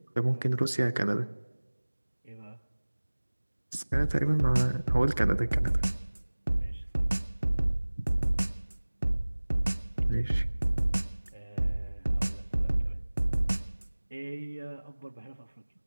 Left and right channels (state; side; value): inverted; both; correlation -1.00